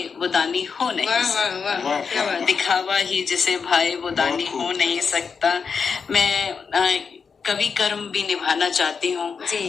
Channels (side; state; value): right; quieter; 5.7 dB